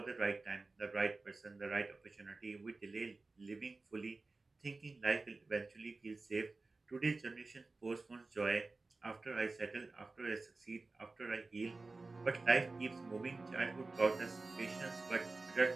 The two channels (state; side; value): quieter; left; 3.5 dB